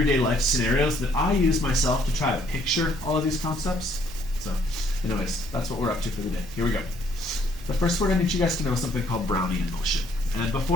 life scenarios that I use myself to try to picture all of these concepts. So anyways, that's what we're up to for the day. Here we go. But first, we're going to need you guys to know something called Brownian motion. And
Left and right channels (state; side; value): normal; both; correlation 0.66